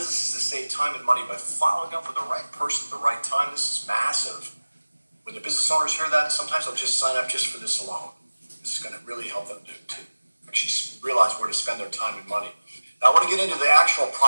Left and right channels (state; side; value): inverted; both; correlation -1.00